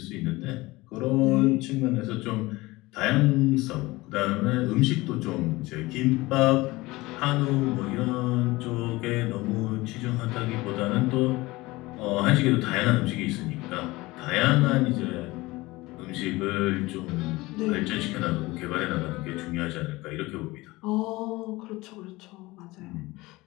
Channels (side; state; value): right; quieter; 20.7 dB